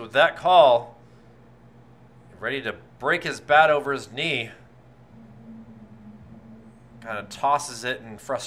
with that call. Ready to break his bat over his knee. Kind of tosses it in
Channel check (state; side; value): identical; both; correlation 1.00